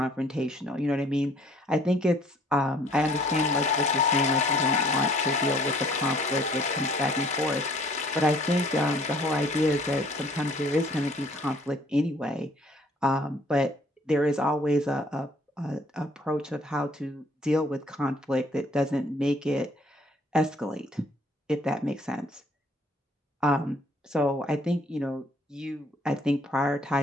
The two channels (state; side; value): normal; both; correlation 0.59